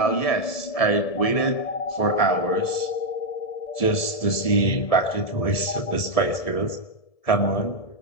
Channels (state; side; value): late; right; 1.7 ms